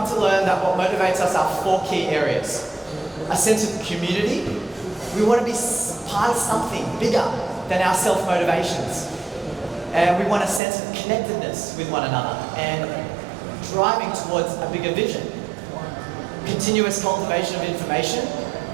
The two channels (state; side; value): drops out; left; at 10.6 s